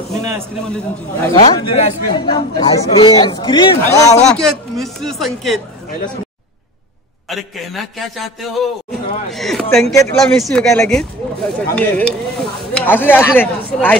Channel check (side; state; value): both; normal; correlation 0.32